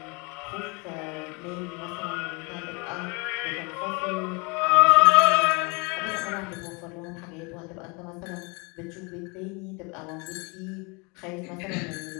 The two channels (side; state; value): right; quieter; 30.0 dB